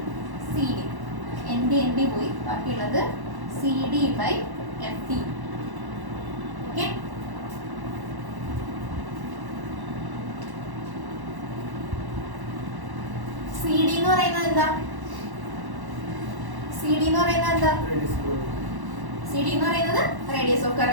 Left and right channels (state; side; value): late; left; 1.1 ms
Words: CD. ND പോയി, ബാക്കിയുള്ളത് CD by FD. Okay, CD എന്ന് പറയുന്നത് എന്താ? CD എന്ന് പറയുന്നത് എന്താ? CD എന്ന് പറയുന്നത് റേഡിയസ് ഓഫ്